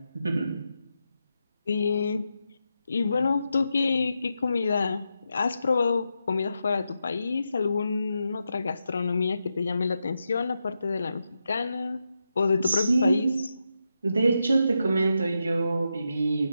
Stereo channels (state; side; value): inverted; both; correlation -0.86